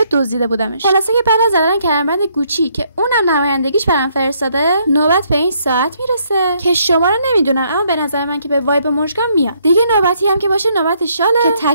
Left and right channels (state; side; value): inverted; both; correlation -0.70